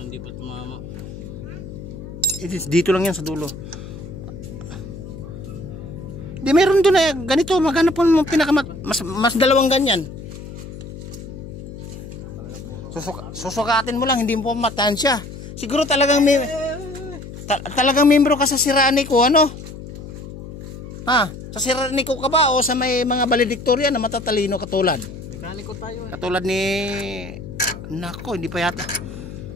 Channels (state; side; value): noise; left; hum, 12 dB below the sound